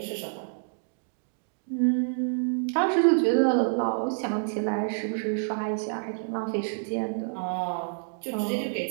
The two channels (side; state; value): left; silent; digital silence